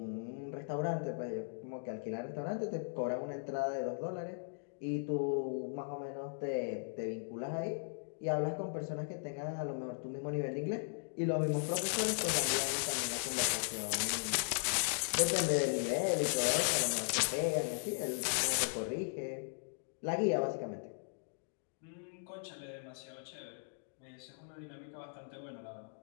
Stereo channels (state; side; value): silent; right; digital silence